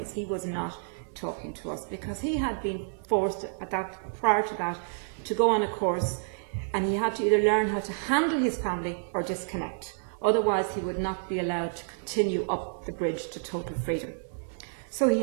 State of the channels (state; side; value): silent; left; 58 dB below the other